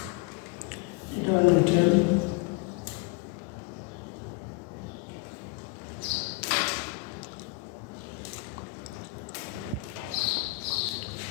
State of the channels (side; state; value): right; quieter; 20.8 dB